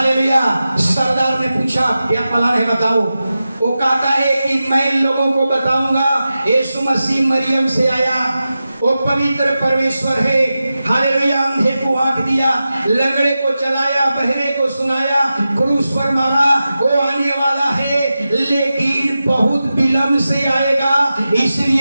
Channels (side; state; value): both; inverted; correlation -0.93